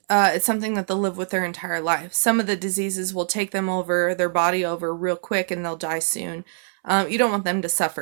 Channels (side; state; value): left; silent; 63 dB below the other